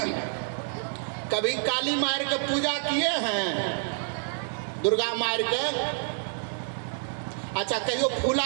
कभी काली मार के पूजा किए हैं? दुर्गा मार के? अच्छा, कहियो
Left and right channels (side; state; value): left; silent; 59 dB below the other